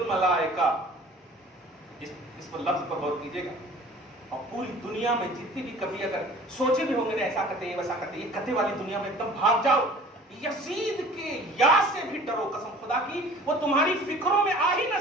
اس پر لفظ پر غور کیجئے گا، اور پوری دنیا میں جتنی بھی کبھی اگر سوچے بھی ہوں گے ایسا کرتے ہیں ویسا کرتے ہیں، یہ کتے والی دنیا میں ایک دم بھاگ جاؤ، یزید کے یا سے بھی ڈرو، قسم خدا کی وہ تمہاری فکروں میں آ ہی نہ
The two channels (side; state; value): both; normal; correlation 0.47